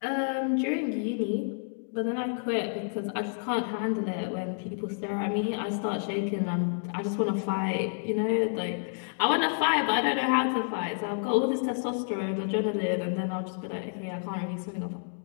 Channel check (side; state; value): right; silent; digital silence